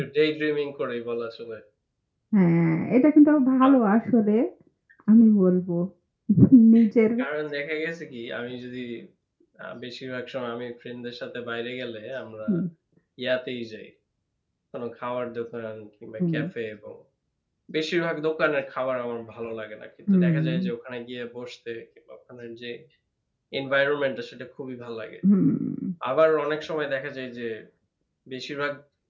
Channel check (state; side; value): identical; both; correlation 1.00